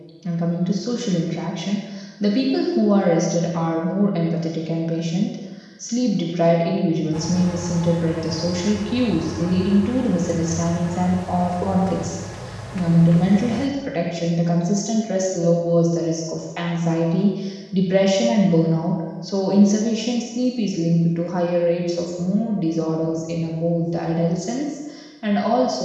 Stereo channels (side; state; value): both; identical; correlation 1.00